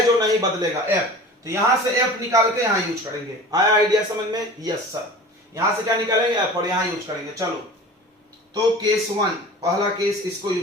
जो नहीं बदलेगा, एफ। तो यहां से एफ निकाल के यहां यूज करेंगे। आया आइडिया समझ में? Yes sir. यहां से क्या निकालेंगे, एफ, और यहां यूज करेंगे। चलो तो केस 1, पहला केस इसको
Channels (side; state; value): both; normal; correlation 0.39